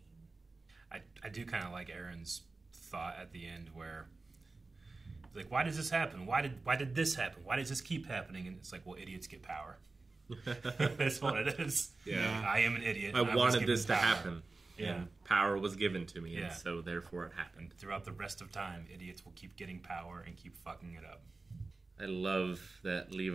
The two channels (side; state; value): left; quieter; 3.6 dB